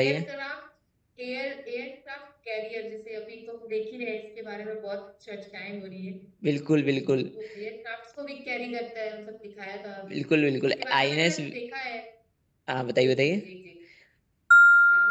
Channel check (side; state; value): both; identical; correlation 1.00